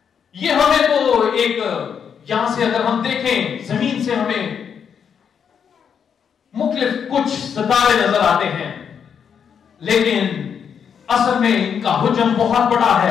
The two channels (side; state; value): right; quieter; 7.4 dB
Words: یہ ہمیں تو ایک یہاں سے اگر ہم دیکھیں زمین سے ہمیں مختلف کچھ ستارے نظر آتے ہیں، لیکن اصل میں ان کا حجم بہت بڑا